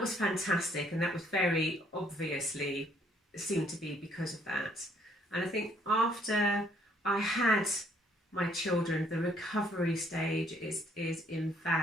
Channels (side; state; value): both; normal; correlation 0.66